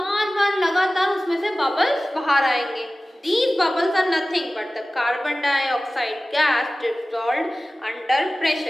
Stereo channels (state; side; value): normal; both; correlation 0.97